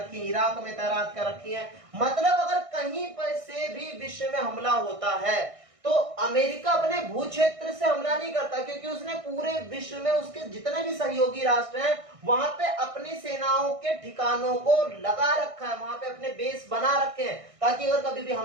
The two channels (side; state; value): left; late; 1.6 ms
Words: है, इराक में तैनात कर रखी है। मतलब अगर कहीं पर से भी विश्व में हमला होता है तो अमेरिका अपने भू क्षेत्र से हमला नहीं करता, क्योंकि उसने पूरे विश्व में उसके जितने भी सहयोगी राष्ट्र हैं वहां पे अपनी सेनाओं के ठिकानों को लगा रखा है, वहां पे अपने बेस बना रखे हैं, ताकि अगर कभी भी